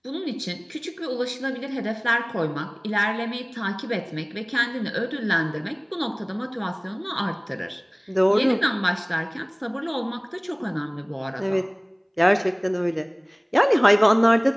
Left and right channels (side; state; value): both; identical; correlation 1.00